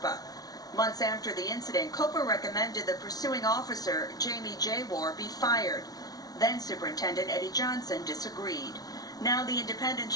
Months after the incident, COPA recommended the pursuing officer, Jamie Jaywar, be fired. Then Superintendent Eddie Johnson disagreed. Now the independent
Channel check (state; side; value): late; right; 0.18 ms